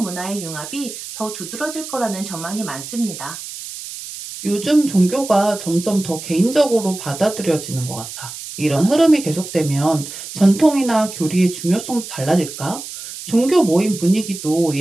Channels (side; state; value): right; noise; hiss, 11 dB below the sound